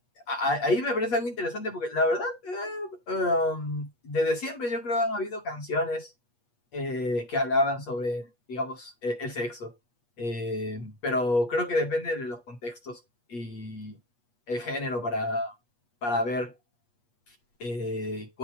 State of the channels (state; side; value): late; right; 8.4 ms